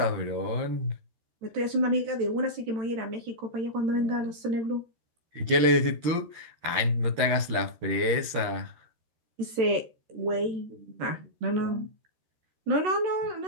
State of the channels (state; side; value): late; left; 13 ms